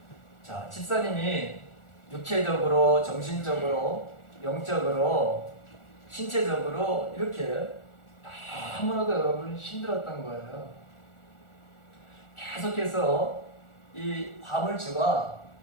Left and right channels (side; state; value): right; late; 1.4 ms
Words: 자, 집사님이 육체적으로, 정신적으로, 영적으로, 신체적으로 이렇게 너무나도 여러분 힘들었던 거예요. 계속해서 이 화물주가